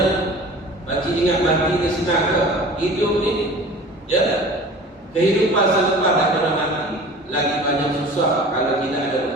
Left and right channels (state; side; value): normal; both; correlation 0.41